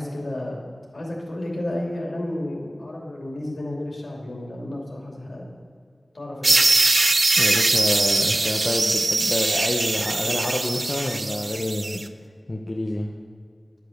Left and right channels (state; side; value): normal; both; correlation 0.97